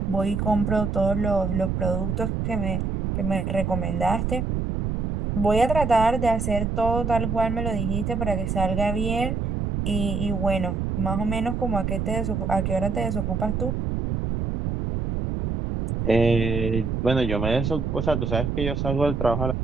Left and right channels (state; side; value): noise; right; rumble, 1 dB below the sound